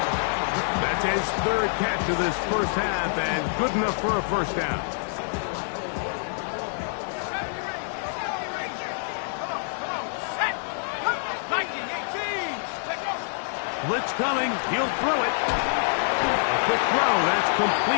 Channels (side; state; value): right; silent; digital silence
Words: That's his third catch of this first half, and good enough for a first down. Blitz coming. He'll throw it. A quick throw. That's